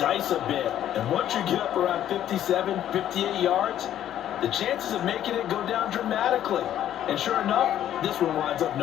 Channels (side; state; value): right; quieter; 11.3 dB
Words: a bit. And once you get up around 57, 58 yards, the chances of making it go down dramatically. And sure enough, this one winds up